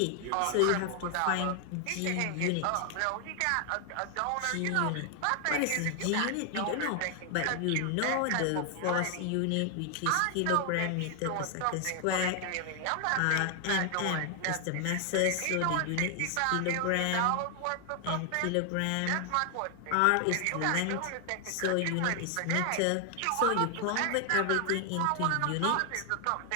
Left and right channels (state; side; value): different; both; correlation 0.00